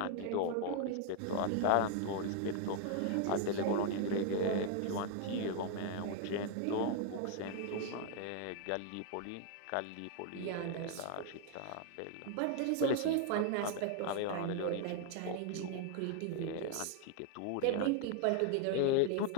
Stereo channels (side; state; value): both; different; correlation 0.00